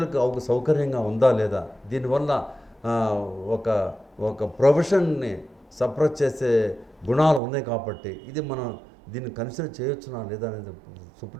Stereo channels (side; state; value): left; drops out; at 7.4 s